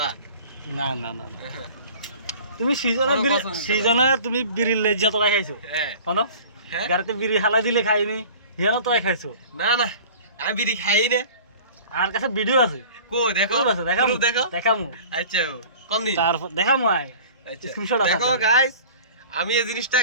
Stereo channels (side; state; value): both; inverted; correlation -0.43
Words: না না না না তুমি সিজনে কোনো কসম দিতে সিজনে তুমি বিরিলে যত খাইছো হ্যাঁ হনো হ্যাঁ গাড়িতে বিড়ি হালা দিলে খাইনি হেন তো খাইছো না না আমি বিড়ি খাই না আর কাছে ভিডিও আছে কো দেখো proof আছে দেখামু proof দেখো দেখামু আচ্ছা কোন দিন তারপর দেখামু আয় আচ্ছা স্ক্রিনশট আছে দেখো গাইস আমি এই জিনিসটা